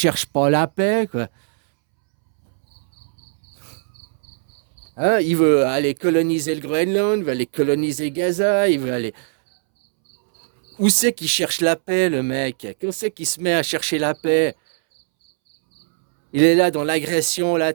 pas la paix, quoi. Hein? Il veut aller coloniser le Groenland, il veut aller coloniser Gaza, il veut aller... Où c'est qu'il cherche la paix, le mec? Où c'est qu'il se met à chercher la paix? Il est là dans l'agression,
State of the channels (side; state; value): left; silent; 66 dB below the other